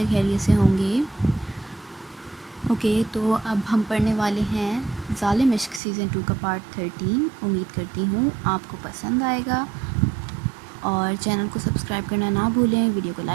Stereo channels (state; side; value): drops out; left; at 5.8 s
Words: خیریت سے ہوں گے۔ اوکے، تو اب ہم پڑھنے والے ہیں ظالم عشق سیزن 2 کا پارٹ 13۔ امید کرتی ہوں آپ کو پسند آئے گا، اور چینل کو سبسکرائب کرنا نہ بھولیں، ویڈیو کو